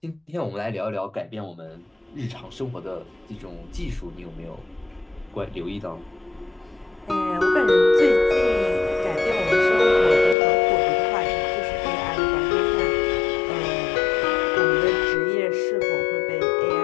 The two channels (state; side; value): drops out; right; at 10.4 s